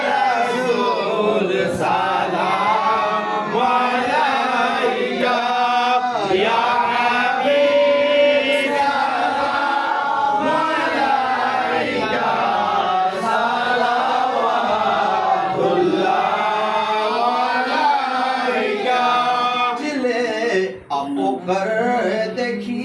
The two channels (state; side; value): identical; both; correlation 1.00